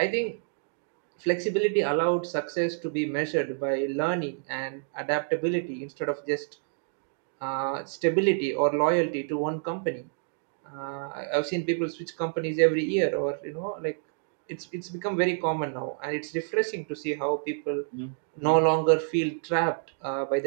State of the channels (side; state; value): left; silent; digital silence